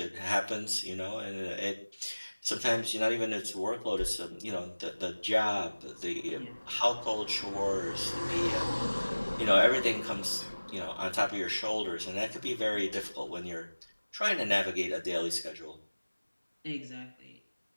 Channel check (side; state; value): both; inverted; correlation -1.00